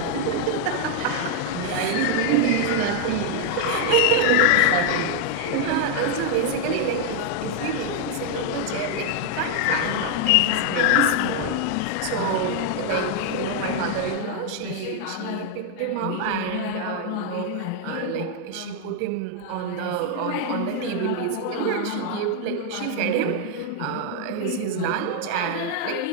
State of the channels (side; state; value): both; different; correlation 0.00